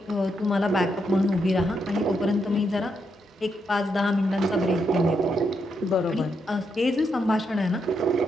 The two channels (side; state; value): both; normal; correlation 0.80